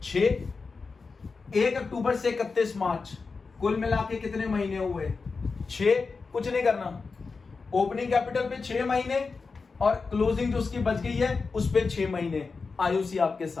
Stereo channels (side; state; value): right; quieter; 4.5 dB